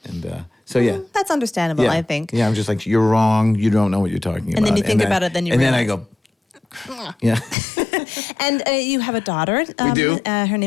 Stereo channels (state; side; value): drops out; right; at 7.6 s